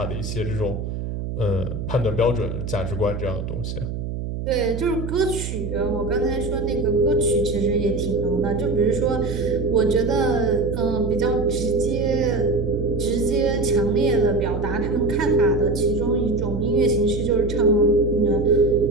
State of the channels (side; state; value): right; noise; hum, 5 dB below the sound